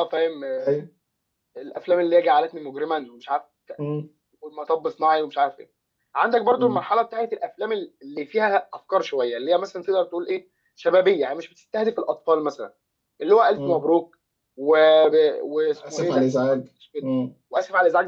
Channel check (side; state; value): both; identical; correlation 1.00